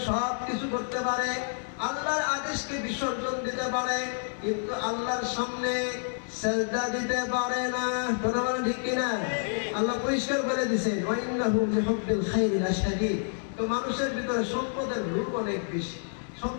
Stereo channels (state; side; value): silent; right; digital silence